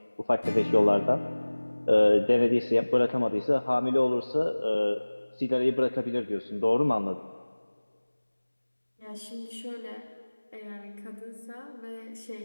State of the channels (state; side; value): inverted; both; correlation -1.00